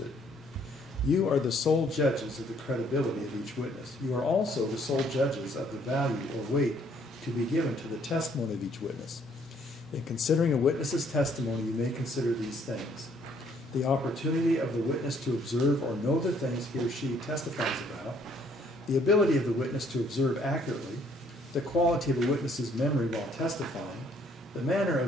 You are the sole judges of the credibility of each witness. You are also the sole judges of the value or weight to be given to the testimony of each witness. In considering a witness's testimony, you may consider these things: the opportunity of the witness to observe or know the things he or she testifies about, the ability of the witness to observe accurately, the quality of a witness's memory while testifying, the manner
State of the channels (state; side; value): normal; both; correlation 0.64